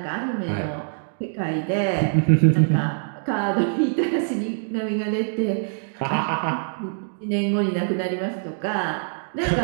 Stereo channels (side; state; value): left; silent; digital silence